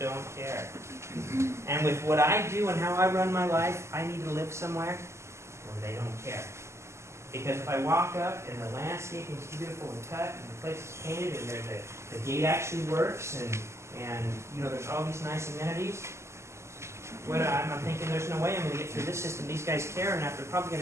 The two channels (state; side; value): late; left; 0.13 ms